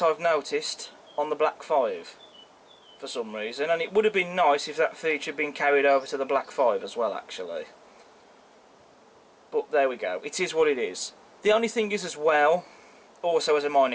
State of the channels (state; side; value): identical; both; correlation 1.00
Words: I've noticed, on the Black 5 for some reason, and it would have been nice if that feature had been carried over to the Black 5 as well actually. But there we go, it is what it is. The only thing is as well, also as a